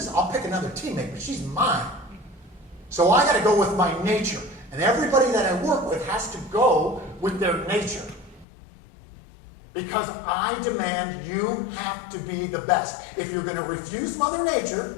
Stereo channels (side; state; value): right; drops out; at 8.5 s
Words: I'll pick another teammate, but she's mine. So I got to go with my nature. And everybody that I work with has to go with their nature. Because I demand you have to be the best. If you're going to refuse Mother